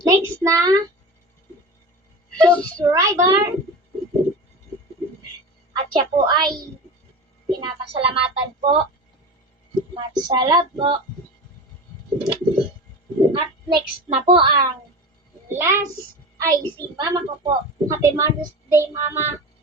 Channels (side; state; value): both; normal; correlation 0.29